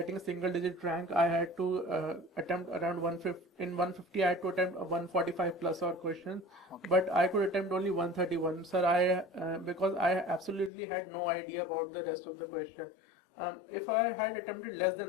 a single digit rank, I had to attempt around 150. In 150, I had to attempt 145 plus or questions, Okay. but I could attempt only 131. Sir, because I absolutely had no idea about the rest of the question. If I had attempted less than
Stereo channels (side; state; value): right; drops out; at 10.7 s